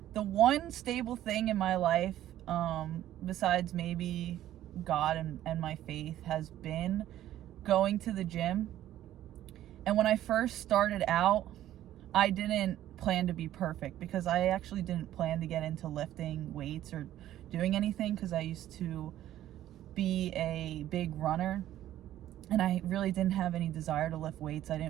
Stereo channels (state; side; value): quieter; left; 12.9 dB